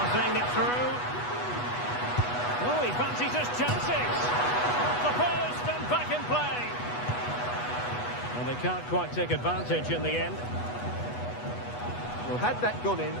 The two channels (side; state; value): right; late; 8.2 ms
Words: it through. Oh, he fancies his chances. Off the post and back in play. Well, they can't quite take advantage in the end. Well, had that gone in,